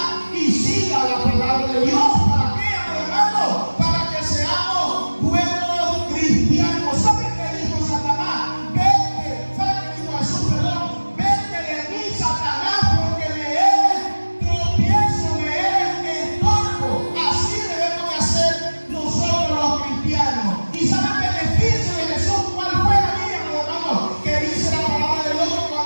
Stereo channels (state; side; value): inverted; both; correlation -1.00